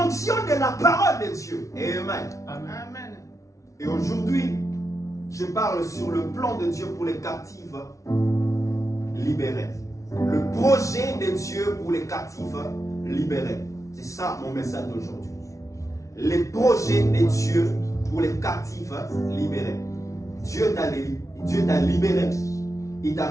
fonction de la parole de Dieu. Amen. Amen. Et aujourd'hui, je parle sur le plan de Dieu pour les captifs libérés. Le projet de Dieu pour les captifs libérés. C'est ça mon message d'aujourd'hui. Les projets de Dieu pour les captifs libérés. Dieu t'a libéré. Il t'a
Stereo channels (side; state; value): right; late; 0.15 ms